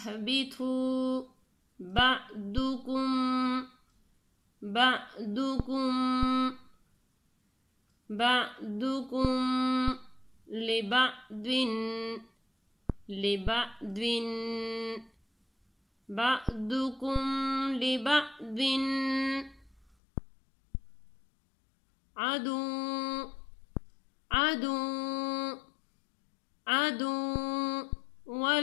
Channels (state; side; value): drops out; right; at 20.0 s